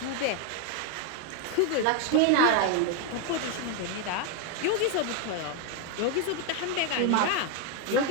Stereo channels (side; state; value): both; different; correlation 0.01